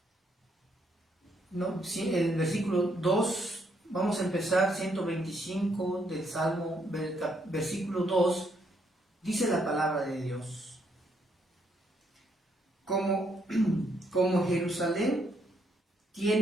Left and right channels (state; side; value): normal; both; correlation 0.73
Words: No, el versículo 2, vamos a empezar 125 del Salmo, versículo 2, dice la palabra de Dios. como, como Jerusalén